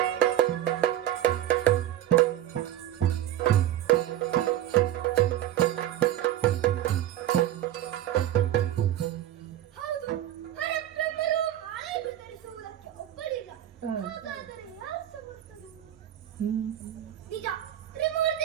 ಹೌದು, ಹರಬ್ರಹ್ಮರು ಮಾಲೆಯನ್ನು ಧರಿಸುವುದಕ್ಕೆ ಒಪ್ಪಲಿಲ್ಲ. ಹಾಗಾದರೆ ಯಾರು ಸಮರ್ಥರು? ನಿಜ,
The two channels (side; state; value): left; quieter; 12.4 dB